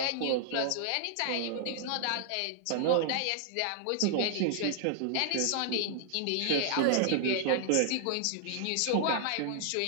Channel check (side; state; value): both; different; correlation -0.01